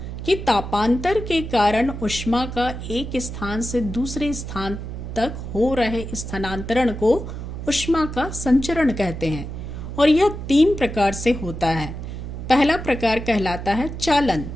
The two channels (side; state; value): right; noise; hum, 8 dB below the sound